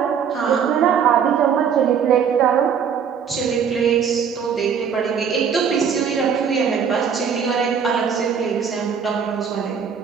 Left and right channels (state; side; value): quieter; left; 7.2 dB